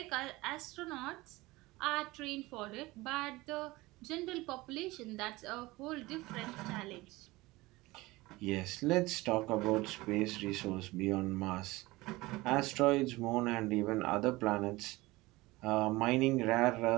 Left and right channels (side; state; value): left; quieter; 20.7 dB